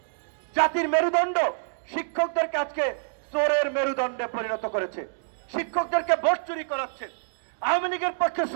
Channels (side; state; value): left; silent; digital silence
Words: জাতির মেরুদণ্ড, শিক্ষকদেরকে আজকে চোরের মেরুদণ্ডে পরিণত করেছে। শিক্ষকদেরকে ভোট চুরি করাচ্ছে, আওয়ামী লীগের পক্ষে